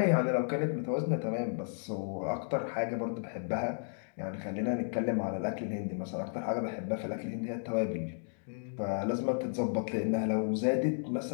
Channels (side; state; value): right; silent; digital silence